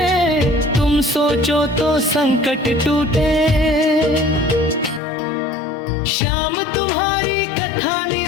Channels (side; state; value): right; drops out; at 5.0 s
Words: तुम सोचो तो संकट टूटे। श्याम तुम्हारी कथा